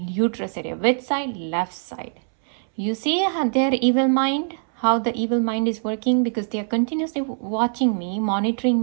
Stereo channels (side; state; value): left; silent; 64 dB below the other